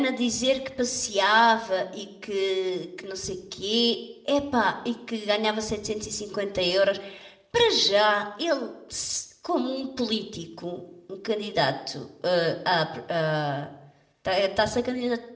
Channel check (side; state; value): both; identical; correlation 1.00